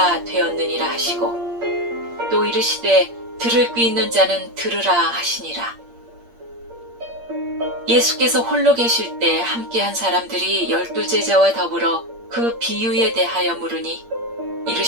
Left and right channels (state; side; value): late; left; 8.6 ms